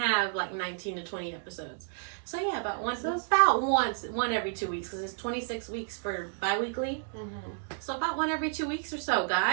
like 19 to 20 episodes. So yeah, about one every 2 weeks, because it's 26 weeks for bi-weekly. So about one every 2 weeks or so,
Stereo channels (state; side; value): silent; left; digital silence